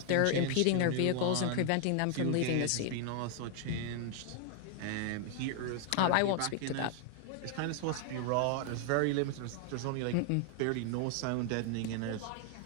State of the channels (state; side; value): different; both; correlation 0.00